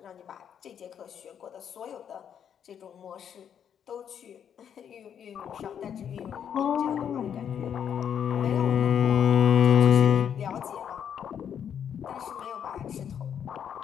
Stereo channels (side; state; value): right; quieter; 8.5 dB